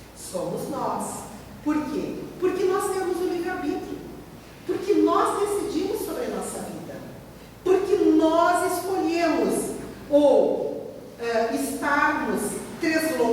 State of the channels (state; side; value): identical; both; correlation 1.00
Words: Somos nós. Por quê? Porque nós temos o livre-arbítrio. Porque nós decidimos sobre a nossa vida. Porque nós escolhemos ou estarmos